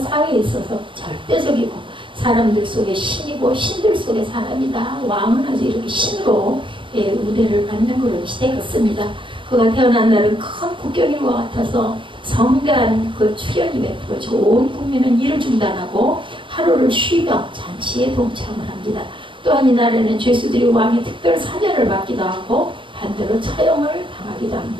사회에 있어서 절대적이고 사람들 속에 신이고 신들 속에 사람이다. 왕은 아주 이렇게 신으로 우대를 받는 그런 시대였습니다. 그가 태어난 날은 큰 국경일과 같아서 성대한 그 출연이 베풀어지고 온 국민은 일을 중단하고 하루를 쉬며 잔치에 동참을 합니다. 또한 이날에는 죄수들이 왕의 특별 사면을 받기도 하고 반대로 처형을 당하기도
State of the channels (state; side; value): late; left; 0.24 ms